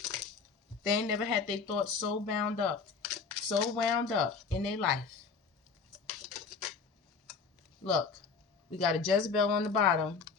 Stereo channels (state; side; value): quieter; right; 5.1 dB